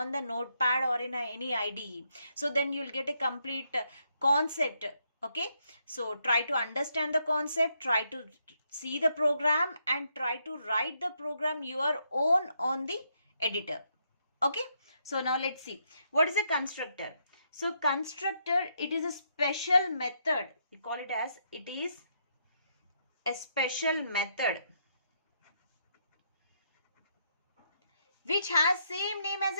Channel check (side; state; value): both; inverted; correlation -0.77